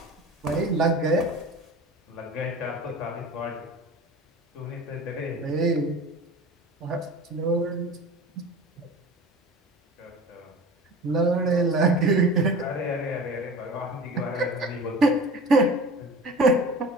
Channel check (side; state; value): both; normal; correlation 0.37